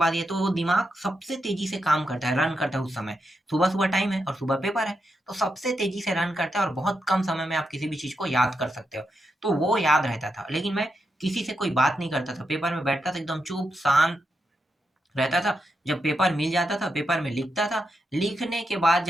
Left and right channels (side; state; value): both; normal; correlation 0.85